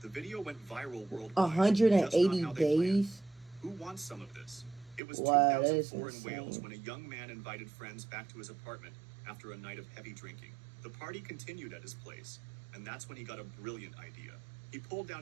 The video went viral worldwide. 180 days? Who wants some of this? It was Wow, that is 2004 in insane. Wales when a young man invited friends back to his apartment after a night of heavy drinking. The party continued at his place, and that's when he got a brilliant idea. He pulled down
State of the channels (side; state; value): left; drops out; at 5.0 s